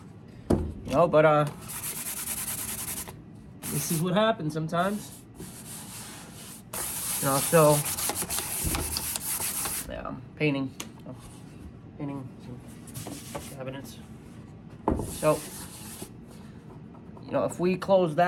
You know, but this is what happens sometimes. You know, so yeah, I'm painting some cabinets. So, you know, if we close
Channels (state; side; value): identical; both; correlation 1.00